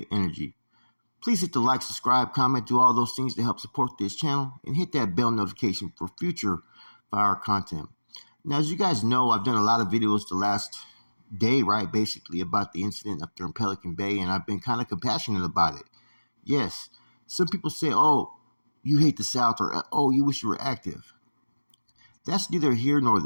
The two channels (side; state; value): both; inverted; correlation -1.00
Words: energy. Please hit the like, subscribe, comment, do all those things to help support this channel, and hit that bell notification for future fire content. Now, as you guys know, I've done a lot of videos the last day, right, basically about the incident up there in Pelican Bay, and I've been kind of compassionate about it. Yes, some people say, oh, you hate the South, or oh, you wish you were active. That's neither here nor